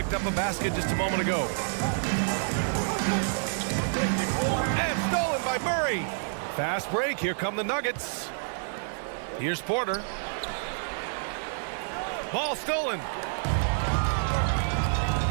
up a basket just a moment ago. And stolen by Murray. Fast break. Here come the Nuggets. Here's Porter. Ball stolen.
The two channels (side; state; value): left; silent; digital silence